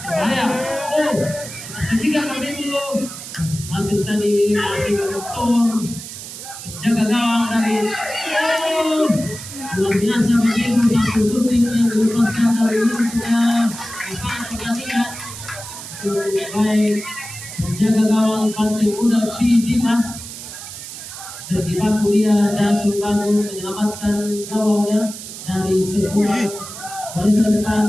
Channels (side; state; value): right; noise; hiss, 11 dB below the sound